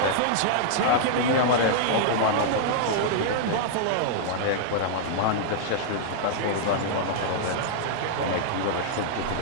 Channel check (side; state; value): both; different; correlation -0.01